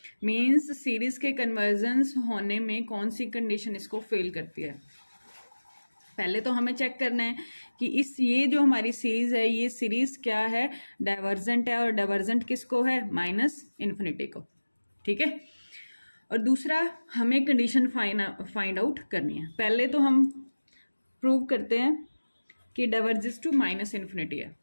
means series के convergence होने में कौन सी condition इसको फेल करती है. पहले तो हमें चेक करना है कि ये जो हमारी सीरीज है, ये सीरीज क्या है, डाइवर्जेंट है. और डाइवर्जेंट किसको है, माइनस इन्फिनिटी को. ठीक है, और दूसरा हमें कंडीशन फाइंड आउट करनी है. पहले तो हम प्रूव करते हैं कि डाइवर्जेस टू माइनस इन्फिनिटी है.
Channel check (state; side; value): inverted; both; correlation -1.00